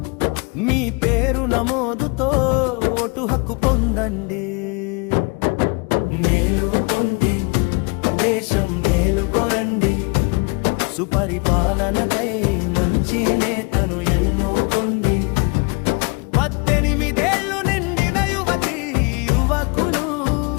మీ పేరు నమోదుతో ఓటు హక్కు పొందండి. మేలుకొండి, దేశం మేలుకొరండి, సుపరిపాలనకై మంచి నేతను ఎన్నుకోండి. 18 ఏళ్ళు నిండిన యువతి యువకులు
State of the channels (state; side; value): quieter; right; 30.3 dB